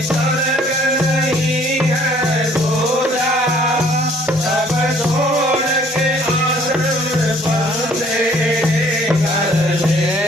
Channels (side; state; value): both; normal; correlation 0.58